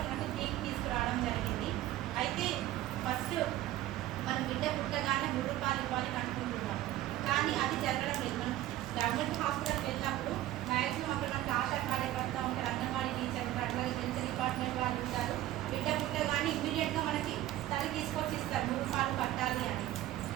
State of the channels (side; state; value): left; quieter; 14.4 dB